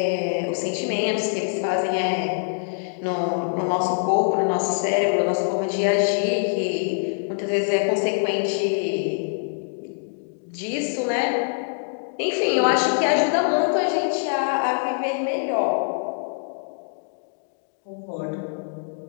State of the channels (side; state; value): right; silent; digital silence